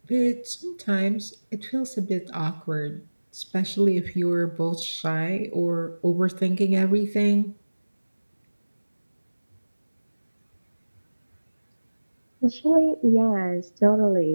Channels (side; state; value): both; inverted; correlation -1.00